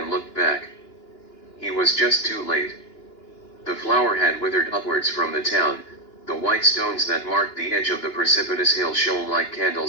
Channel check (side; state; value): right; late; 2.9 ms